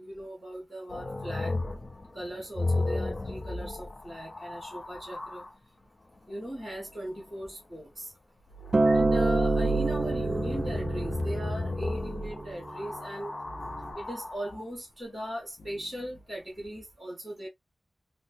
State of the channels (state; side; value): normal; both; correlation 0.94